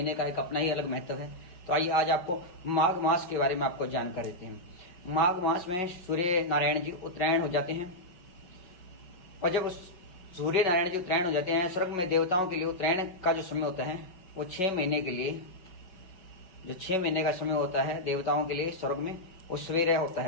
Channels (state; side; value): late; right; 5.4 ms